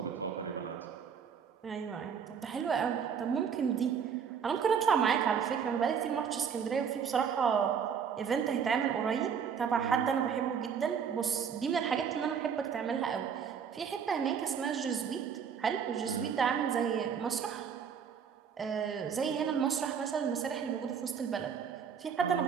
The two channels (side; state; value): left; quieter; 7.1 dB